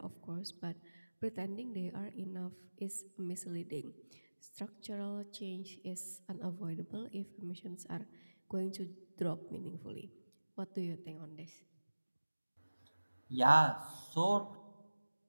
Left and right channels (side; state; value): both; inverted; correlation -1.00